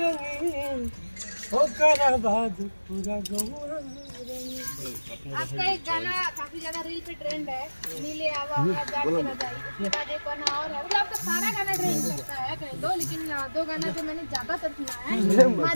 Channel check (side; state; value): both; inverted; correlation -1.00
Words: ओ कराबाद पूरा गहुआ रंगी। आपका एक गाना काफी ज्यादा रील पे ट्रेंड है, नीले आवा आवा जाट के न जाई। उसके बाद एक गाना और है, मतलब आपका सारा गाना ट्रेंड करता है कह दो, लेकिन दो गाना जो मैंने ज्यादातर सुना है